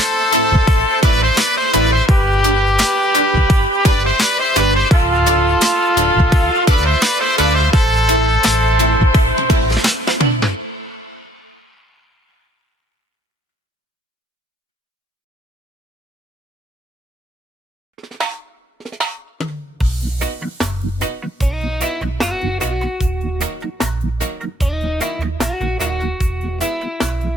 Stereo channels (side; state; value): both; normal; correlation 0.64